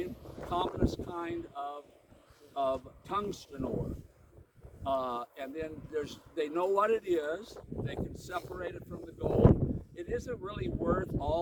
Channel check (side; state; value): both; identical; correlation 1.00